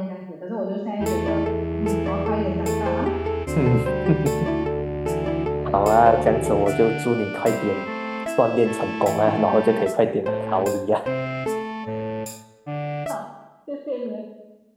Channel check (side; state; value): both; identical; correlation 1.00